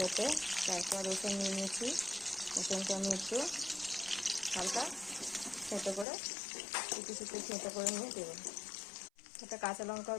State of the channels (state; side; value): drops out; right; at 6.1 s